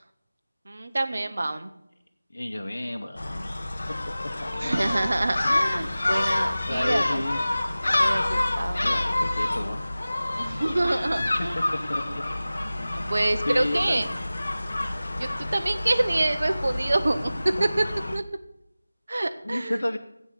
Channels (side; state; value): both; inverted; correlation -0.97